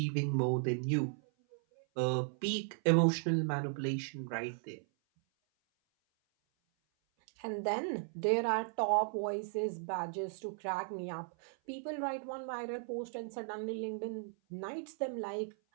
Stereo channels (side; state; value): left; silent; 53 dB below the other